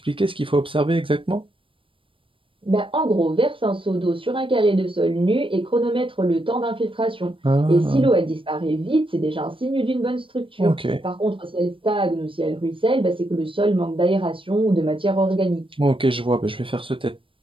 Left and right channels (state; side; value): late; left; 0.25 ms